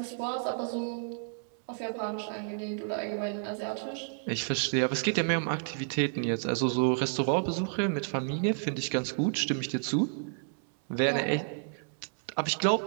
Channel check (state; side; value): silent; left; 57 dB below the other